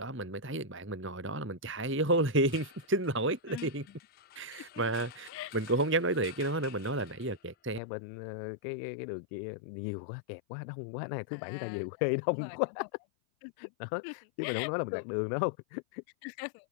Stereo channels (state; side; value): drops out; right; at 7.8 s